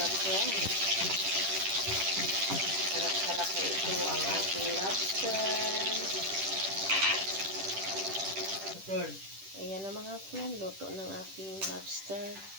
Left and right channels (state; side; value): late; left; 10 ms